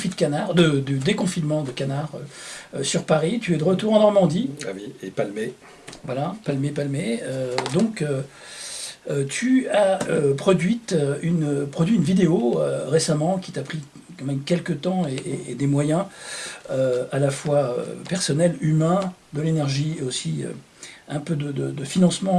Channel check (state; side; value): identical; both; correlation 1.00